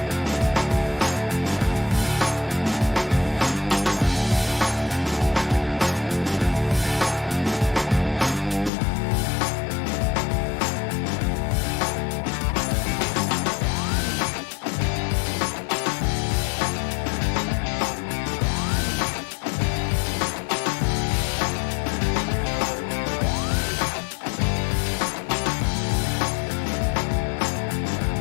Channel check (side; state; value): right; drops out; at 8.7 s